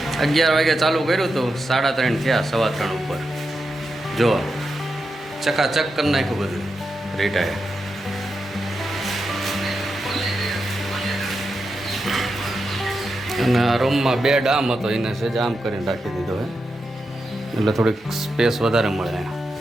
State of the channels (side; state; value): both; normal; correlation 0.87